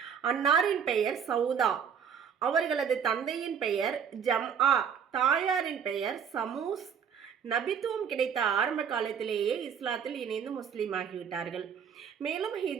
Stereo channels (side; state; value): left; quieter; 7.3 dB